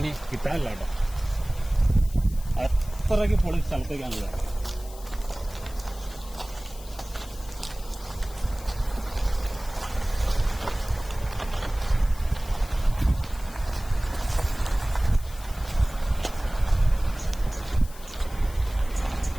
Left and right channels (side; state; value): left; noise; hiss, 19 dB below the sound